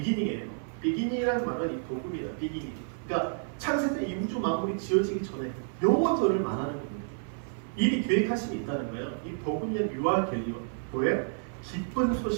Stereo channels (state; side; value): silent; left; 58 dB below the other